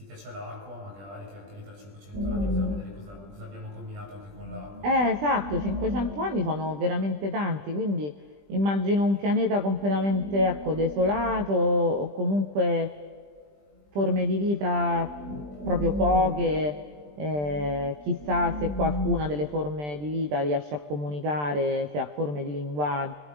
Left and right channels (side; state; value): left; late; 20 ms